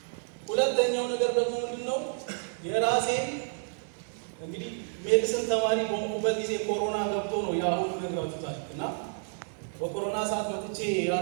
ሁለተኛው ነገር ደግሞ ምንድነው የራሴን እንግዲህ ሜዲሲን ተማሪ በሆንኩበት ጊዜ ኮሮና ገብቶ ነው ያሁን ነግራችሁታል። እና በኮሮና ሰዓት መጥቼ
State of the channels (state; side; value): silent; left; digital silence